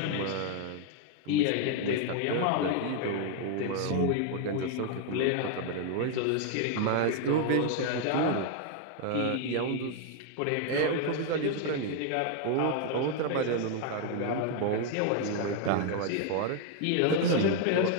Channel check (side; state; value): both; different; correlation 0.00